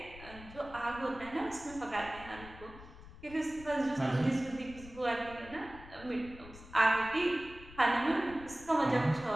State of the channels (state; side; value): noise; left; rumble, 17 dB below the sound